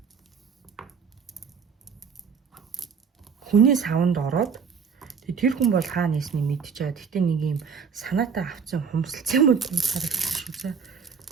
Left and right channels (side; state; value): left; quieter; 6.1 dB